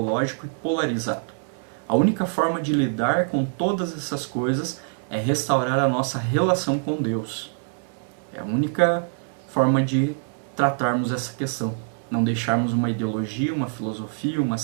e polarizado. A única forma de lidar com todas essas coisas é restaurar a nossa relação com Deus. É a única forma de tratarmos essa questão. Não deixarmos uma ideologia, uma filosofia, uma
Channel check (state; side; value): silent; left; 62 dB below the other